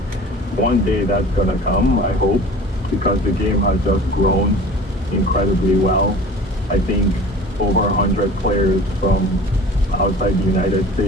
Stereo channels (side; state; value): both; normal; correlation 0.43